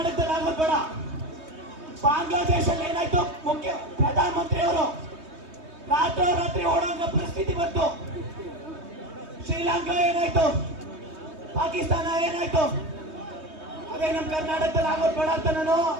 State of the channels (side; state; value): left; late; 3.2 ms